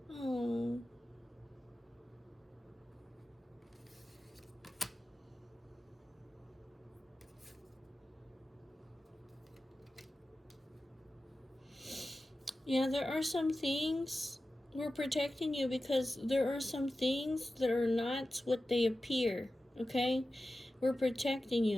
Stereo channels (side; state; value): both; normal; correlation 0.94